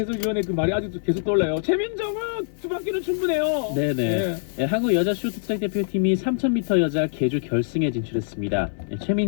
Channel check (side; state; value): right; silent; digital silence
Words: 그 말이 아직도 계속 떠올라요. 최민정은 두 바퀴는 충분해요. 네네. 네, 한국 여자 쇼트트랙 대표팀이 3000m 여자 계주 결승에 진출했습니다.